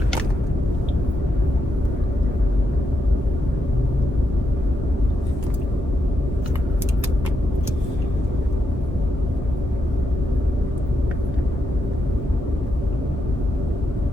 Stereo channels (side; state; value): both; normal; correlation 0.82